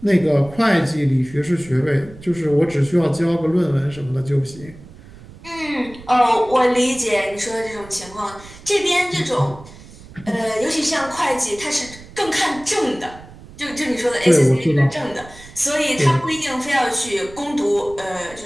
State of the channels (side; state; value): right; noise; rumble, 19 dB below the sound